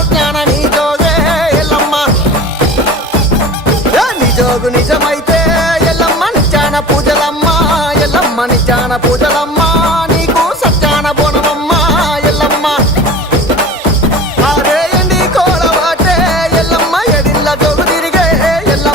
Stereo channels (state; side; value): normal; both; correlation 0.37